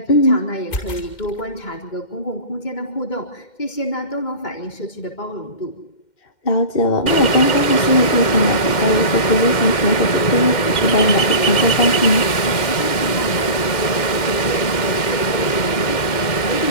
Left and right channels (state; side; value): late; right; 2.1 ms